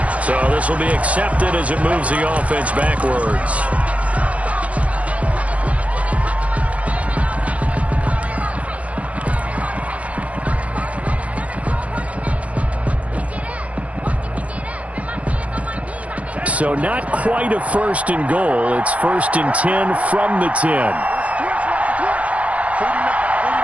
So this will be accepted as it moves the offense backwards. So not quite a first and goal. It's first and 10 from the 10.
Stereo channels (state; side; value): late; left; 0.065 ms